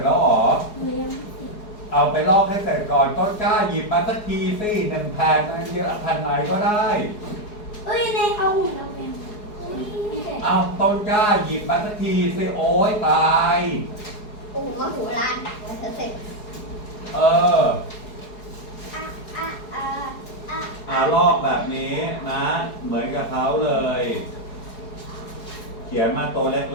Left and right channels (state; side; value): late; right; 4.8 ms